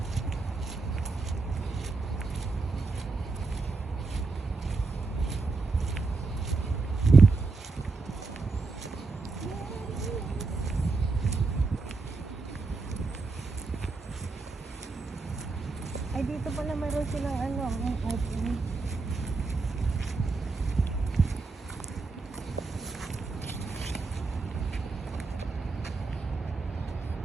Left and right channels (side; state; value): left; quieter; 4.0 dB